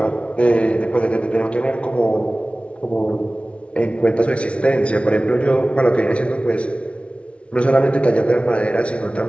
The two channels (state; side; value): late; right; 0.061 ms